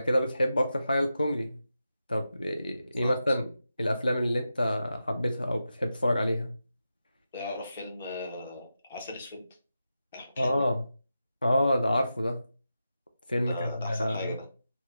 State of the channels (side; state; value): both; inverted; correlation -0.89